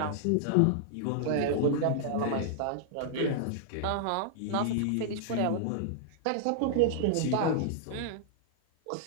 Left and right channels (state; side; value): different; both; correlation -0.01